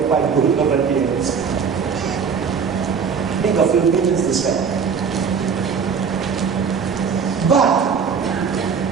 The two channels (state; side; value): quieter; left; 6.2 dB